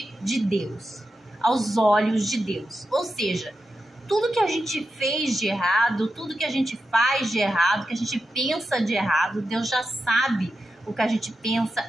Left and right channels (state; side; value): normal; both; correlation 0.89